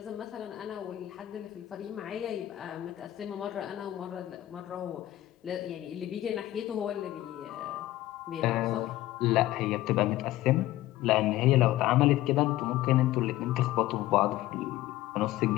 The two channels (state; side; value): quieter; right; 15.3 dB